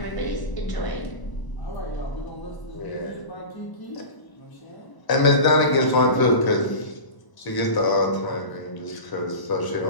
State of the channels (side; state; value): right; late; 1.0 ms